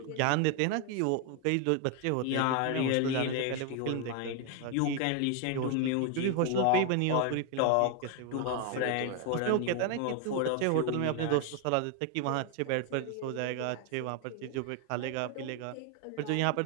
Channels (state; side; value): different; both; correlation 0.01